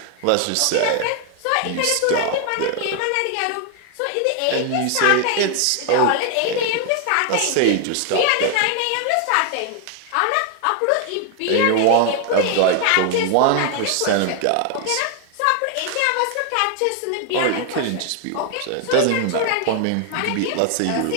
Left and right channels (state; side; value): different; both; correlation 0.00